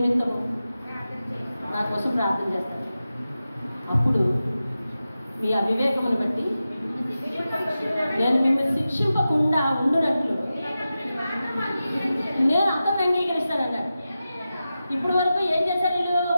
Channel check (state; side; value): inverted; both; correlation -0.93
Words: నా కోసం ప్రార్థన చేస్తాడు. అప్పుడు మీ అవివేకమును బట్టి నేను మిమ్మల్ని శిక్షింపకుండా ఉండునట్లు నేను అతన్ని అంగీకరిస్తానన్నాడు. ఇప్పుడు వరకు ఏం చేశారు వీళ్ళు?